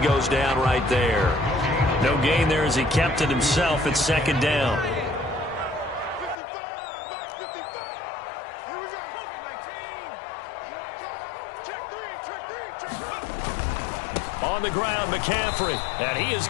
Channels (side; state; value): right; drops out; at 6.4 s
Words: goes down right there. No gain there as he kept it himself at 2nd down. On the ground, McCaffrey, and he is